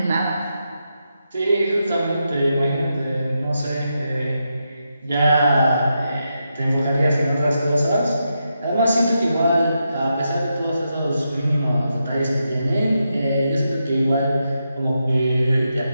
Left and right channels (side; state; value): both; inverted; correlation -0.85